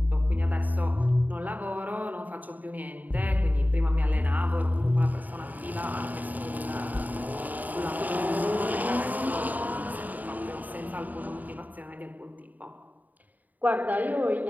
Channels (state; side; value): late; left; 0.081 ms